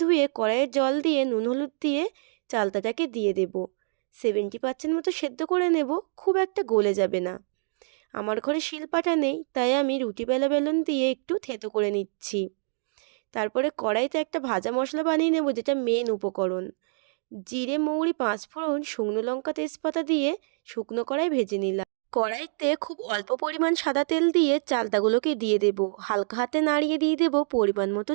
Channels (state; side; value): silent; left; digital silence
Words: ধুয়ে কড়াইয়ে জল দিয়ে নুন হলুদ দিয়ে চালতাটাকে দিয়ে দেব। 70% মতো সেদ্ধ করে নেব, খুব একটা গলে যাবে না। আমার ঘরে শিলপাটা নেই, তাই আমি রুটি বেলা বেলন দিয়ে একটু থেতো করে নিচ্ছি। তারপরে কড়াইতে একটা ভাজা মশলা বানিয়ে নেব, যেটা মেন উপকরণ। জিরে মৌরি পাঁচফোড়ন শুকনো লঙ্কা তেজপাতা দিয়ে শুকনো কড়াই ভেজে নিলাম। কড়াইতে খুব অল্প পরিমাণ সাদা তেল দিয়ে চালতাগুলোকে দিয়ে দেব। হালকা হাতে নাড়িয়ে দিয়ে দেব পরিমাণ মতো